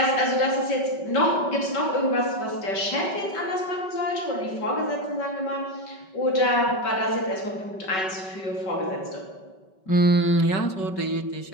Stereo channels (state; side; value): late; right; 5.3 ms